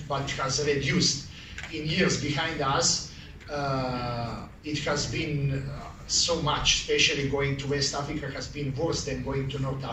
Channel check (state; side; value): identical; both; correlation 1.00